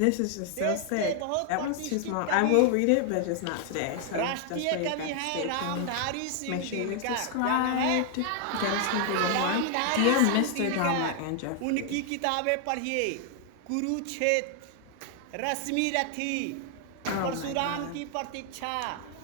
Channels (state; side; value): different; both; correlation 0.00